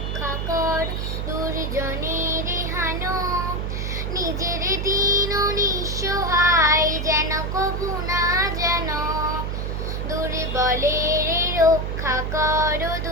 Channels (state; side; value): noise; right; hum, 2 dB below the sound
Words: কর, দুর্জনের হানো, নিজের দীন নিঃসহায় যেন কভু না যেন। দুর্বলের রক্ষা কর,